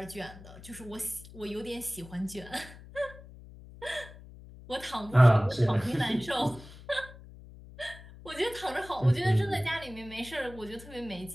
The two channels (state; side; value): noise; left; hum, 18 dB below the sound